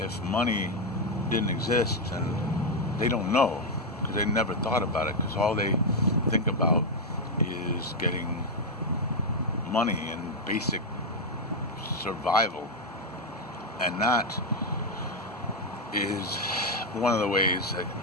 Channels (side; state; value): both; normal; correlation 0.02